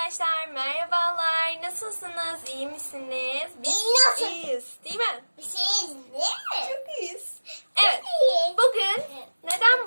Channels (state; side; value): inverted; both; correlation -1.00